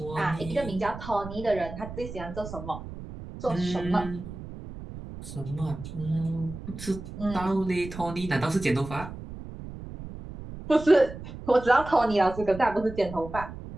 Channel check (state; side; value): noise; right; rumble, 11 dB below the sound